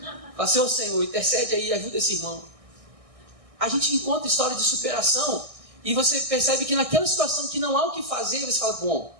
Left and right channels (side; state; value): left; late; 1.6 ms